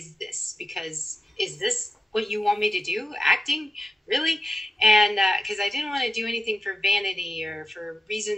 this? Because is this what you want me to do? Acting? Really? And because I didn't want to do anything for vanity or for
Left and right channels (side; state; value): both; normal; correlation 0.91